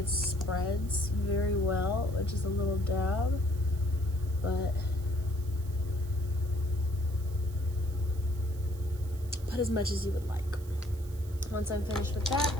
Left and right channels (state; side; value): noise; right; hiss, 22 dB below the sound